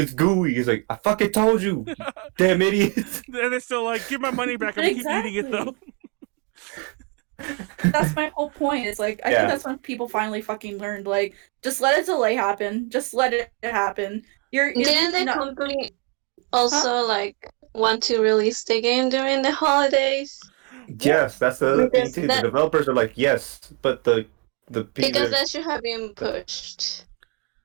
gooey. It's I fucking told you, damn idiots. And they're still give my money back. I'm keep eating it though. That's my whole point. It's I think that's when people finally fucking learned. Just let a delay happen. Just let it happen. Didn't the company also want to release the game during the holidays? Yes, that's the other thing too. The developers are yes, but the people because that should have been pushed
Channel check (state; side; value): quieter; left; 30.7 dB